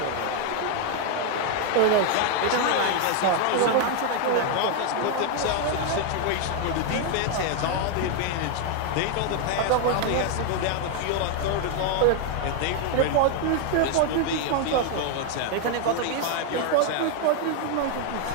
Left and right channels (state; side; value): different; both; correlation 0.01